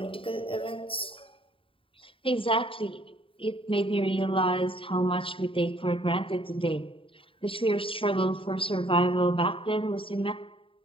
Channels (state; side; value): late; right; 0.26 ms